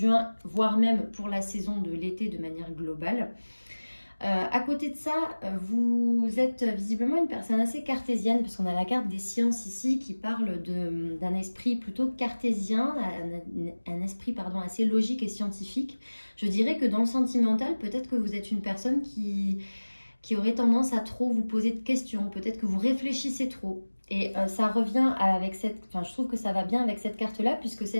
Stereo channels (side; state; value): both; inverted; correlation -1.00